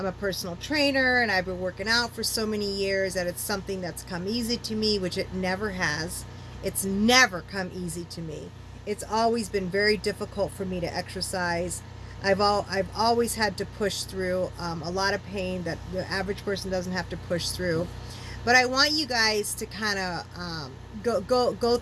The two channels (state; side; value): identical; both; correlation 1.00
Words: a personal trainer and I've been working out for so many years that it's something that's come easy to me, which it never has. It's never come easy to me. It's always been very difficult for me to exercise. I've always had to push through a lot of pain that the average person doesn't have to push through. But I want you guys to kind of go